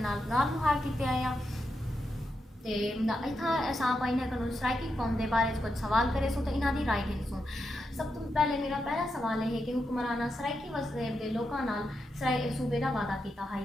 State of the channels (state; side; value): normal; both; correlation 0.86